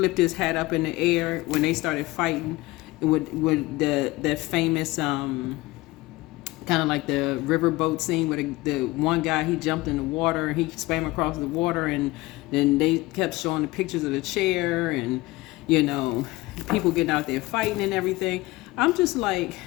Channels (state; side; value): quieter; right; 20.3 dB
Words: his hat up in the air when they started fighting with that famous kind of like the riverboat scene where the one guy, he jumped in the water and he swam across the water, and then they kept showing the pictures of the chair and, you know, people getting out there fighting and everything. I'm just like,